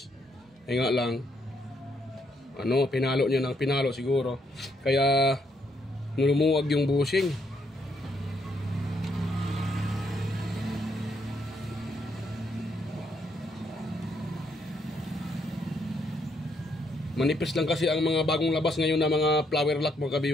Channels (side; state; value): both; normal; correlation 0.74